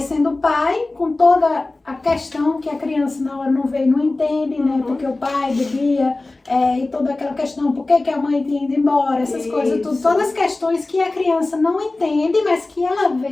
pai, com toda a questão que a criança na hora não vê e não entende, né? Porque o pai bebia, e toda aquela questão, por que a mãe tinha ido embora, essas coisas, tudo. Todas as questões que a criança não entende, mas que ela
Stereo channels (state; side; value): quieter; right; 3.1 dB